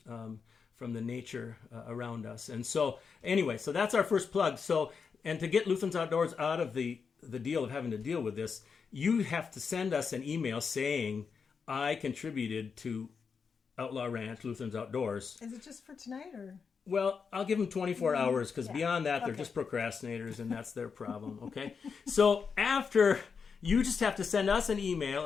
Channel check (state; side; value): quieter; right; 5.8 dB